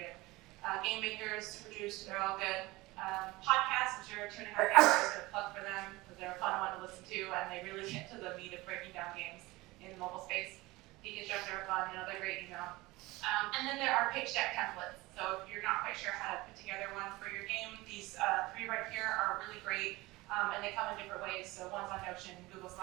Game makers, super juiced, they're all good. Podcasts, I'm sure 2.5 hours is going to plug for them, because they're a fun one to listen to, and they really get to the meat of breaking down games in the mobile space. Deconstructor are fun, another great email. And then there are pitch deck templates. So if you're not quite sure how to put together one for your game, these 3 right here are really great, and they come in different ways. So one's on Notion, Google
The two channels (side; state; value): left; quieter; 20.8 dB